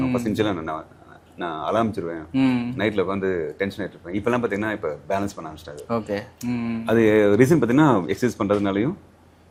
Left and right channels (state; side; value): identical; both; correlation 1.00